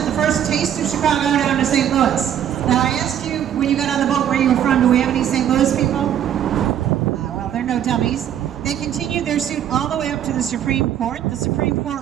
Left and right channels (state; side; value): quieter; left; 10.0 dB